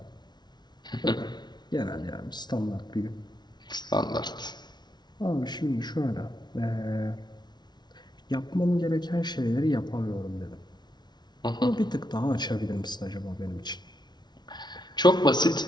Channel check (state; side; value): late; right; 0.20 ms